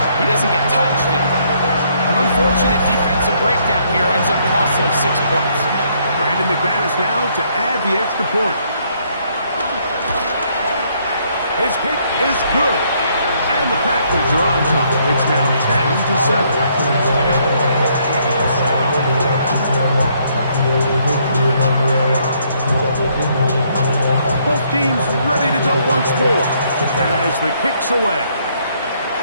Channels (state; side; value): inverted; both; correlation -0.69